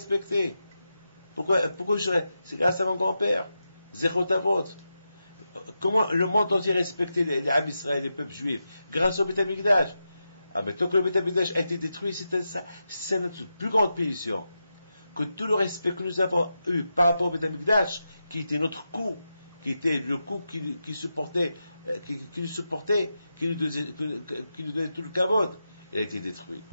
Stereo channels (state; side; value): inverted; both; correlation -0.88